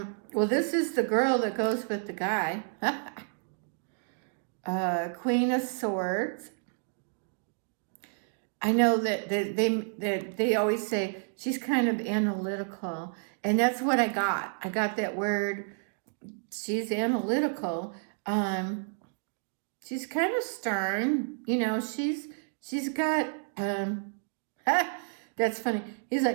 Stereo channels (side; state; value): left; silent; digital silence